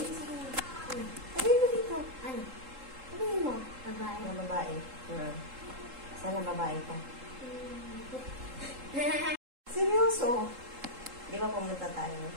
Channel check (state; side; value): late; left; 3.7 ms